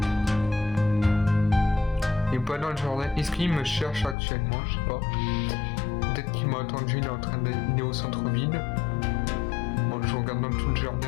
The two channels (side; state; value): right; drops out; at 4.2 s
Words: Il n'est pas dans le jardin. Est-ce qu'il me cherche actuellement? Je sais pas. Peut-être qu'il m'a attendu, il est au centre-ville. Bon, je regarde dans tout le